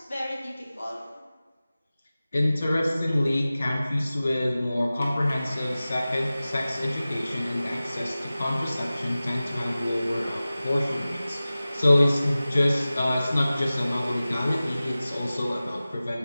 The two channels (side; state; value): both; inverted; correlation -0.97